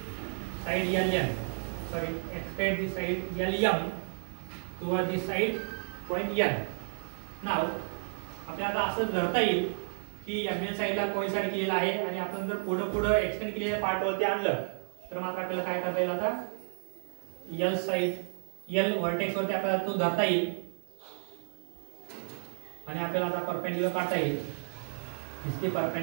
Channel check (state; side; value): silent; left; 57 dB below the other